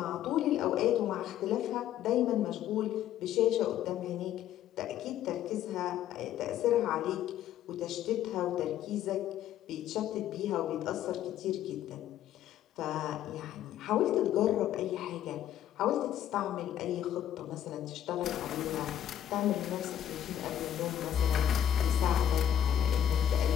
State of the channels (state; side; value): quieter; right; 10.8 dB